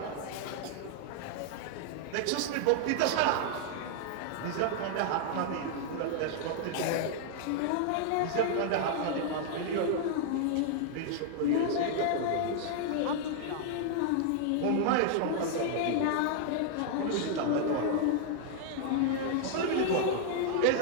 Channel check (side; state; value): both; different; correlation -0.01